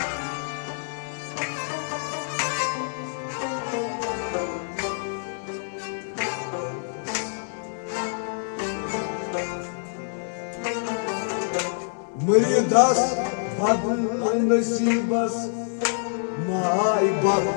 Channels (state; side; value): silent; right; 61 dB below the other